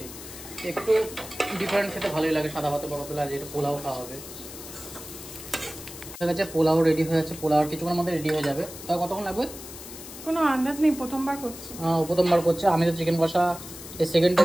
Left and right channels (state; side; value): noise; left; hiss, 13 dB below the sound